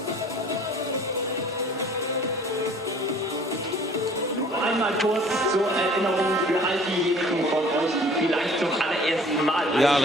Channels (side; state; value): both; normal; correlation 0.51